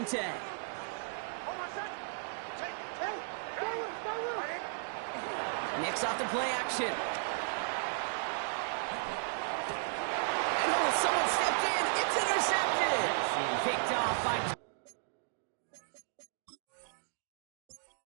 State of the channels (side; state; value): left; silent; digital silence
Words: 10. Nick's off the play action. Oh, someone stepped in. It's intercepted. Picked off by...